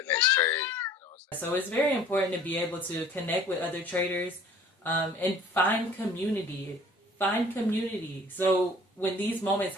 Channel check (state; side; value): normal; both; correlation 0.50